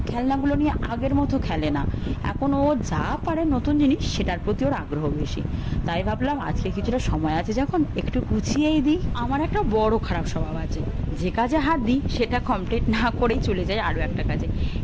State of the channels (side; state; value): both; identical; correlation 1.00